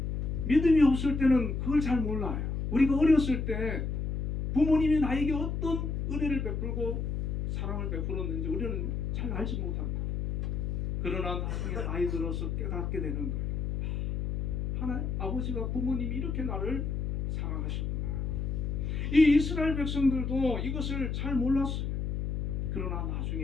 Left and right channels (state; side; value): noise; left; hum, 2 dB below the sound